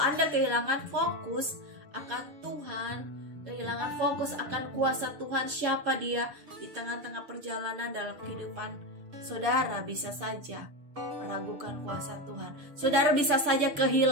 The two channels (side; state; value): left; late; 6.8 ms